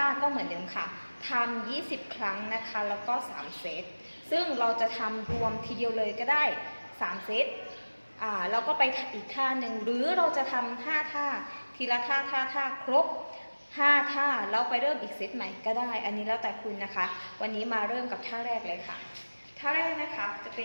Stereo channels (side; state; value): both; inverted; correlation -1.00